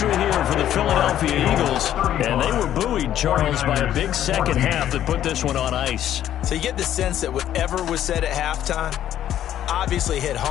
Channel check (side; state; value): right; quieter; 11.4 dB